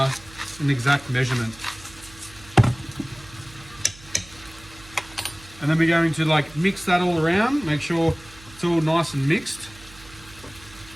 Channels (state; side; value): noise; right; hum, 22 dB below the sound